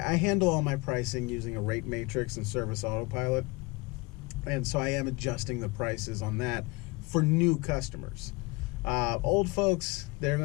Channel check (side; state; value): right; quieter; 25.4 dB